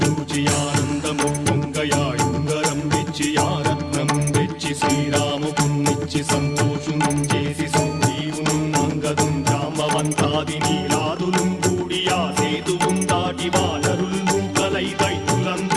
ఆనందము పొంగయాయుంగరం వెచ్చి ఆరత్నం వెచ్చి శ్రీరాముకున్నిచ్చి సంతోషును చేసి సుగ్రీవును అంగదుం జాంబవంతాది నీలాదులుం కూడి ఆ సేతువుం దాటి వానరులు మూకలై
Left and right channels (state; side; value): identical; both; correlation 1.00